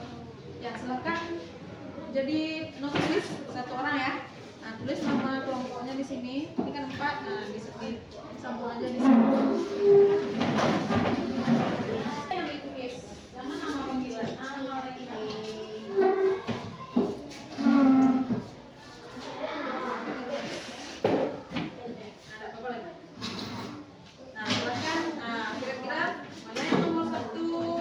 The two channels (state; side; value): identical; both; correlation 1.00